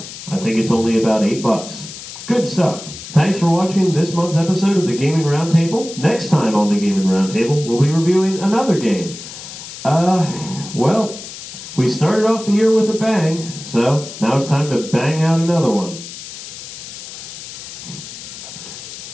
I think it's only about $8. Good stuff. Thanks for watching this month's episode of the Gaming Roundtable. Next time on the Gaming Roundtable, we'll be reviewing another game. Well, we started off the year with a bang, so now it's time to bang out another one.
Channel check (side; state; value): left; noise; hiss, 12 dB below the sound